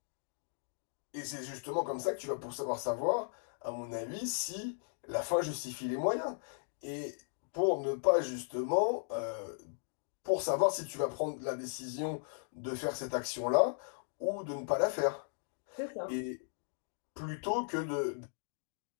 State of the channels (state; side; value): silent; right; digital silence